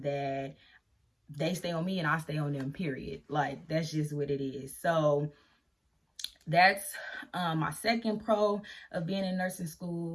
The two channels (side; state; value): both; identical; correlation 1.00